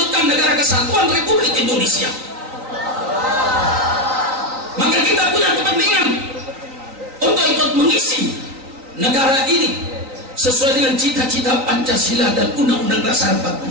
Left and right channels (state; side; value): late; left; 3.9 ms